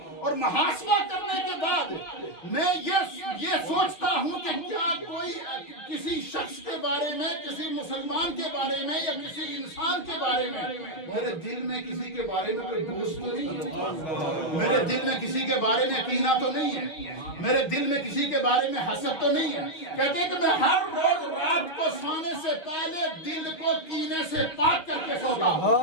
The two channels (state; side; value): late; right; 6.5 ms